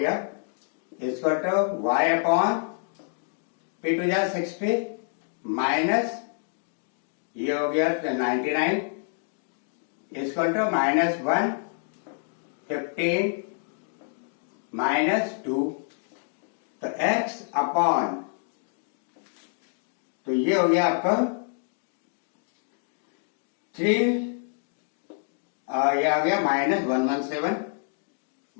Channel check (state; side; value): silent; right; 60 dB below the other